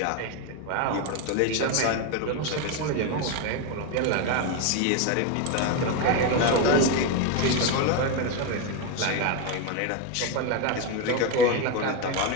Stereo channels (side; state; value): both; different; correlation 0.02